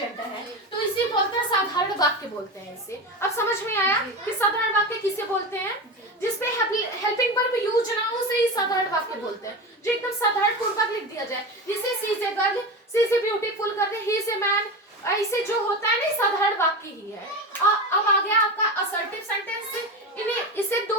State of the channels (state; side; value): normal; both; correlation 0.23